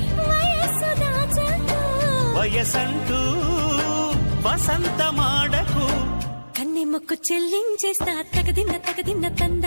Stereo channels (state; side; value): inverted; both; correlation -1.00